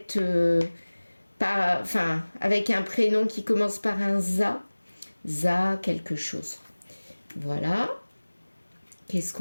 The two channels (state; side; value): inverted; both; correlation -1.00